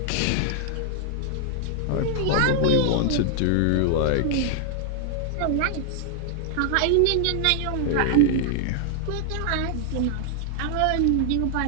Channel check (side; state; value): both; different; correlation -0.01